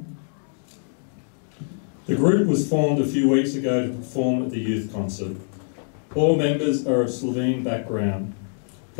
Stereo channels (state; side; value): silent; right; digital silence